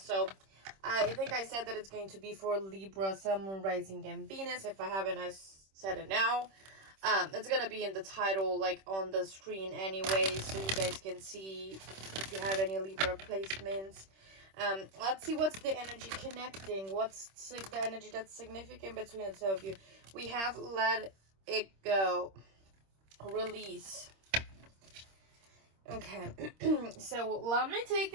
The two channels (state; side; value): late; left; 26 ms